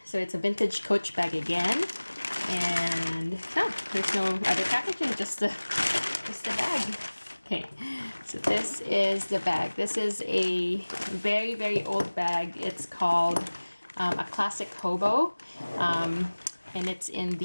So it's a vintage Coach bag again. And no, there's no other packaging, just the bag. Okay, so this is the bag. This is a very, very old bag. It's called a classic HOBO, and it's in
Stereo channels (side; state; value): both; inverted; correlation -1.00